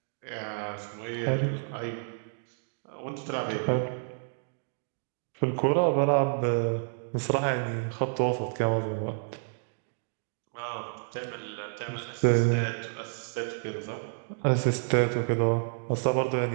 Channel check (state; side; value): silent; left; digital silence